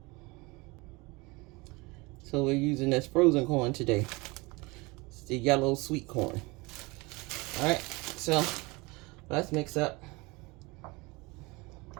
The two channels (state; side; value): quieter; left; 24.7 dB